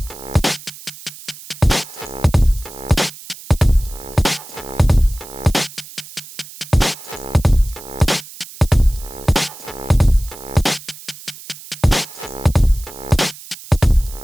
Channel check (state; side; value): noise; right; hiss, 17 dB below the sound